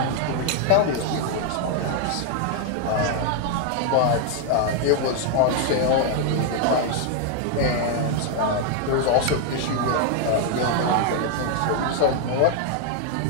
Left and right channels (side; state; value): both; different; correlation 0.00